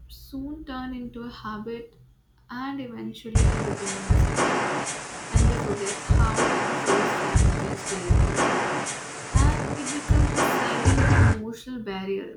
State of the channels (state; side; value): identical; both; correlation 1.00